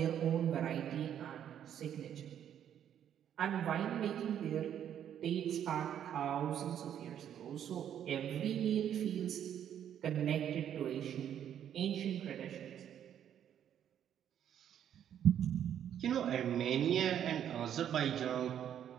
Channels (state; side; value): quieter; left; 9.8 dB